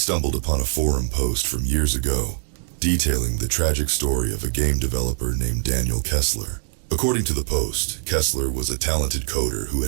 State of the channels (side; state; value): left; silent; digital silence